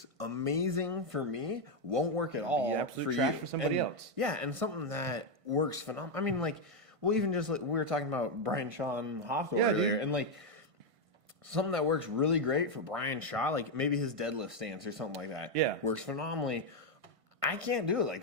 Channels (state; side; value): late; left; 1.5 ms